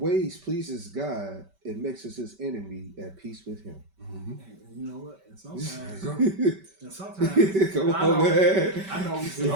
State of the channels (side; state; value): left; late; 5.2 ms